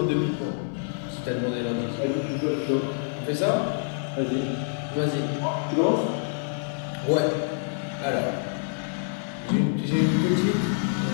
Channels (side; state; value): right; silent; digital silence